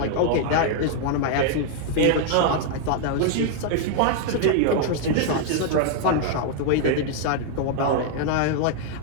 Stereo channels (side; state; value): both; different; correlation 0.00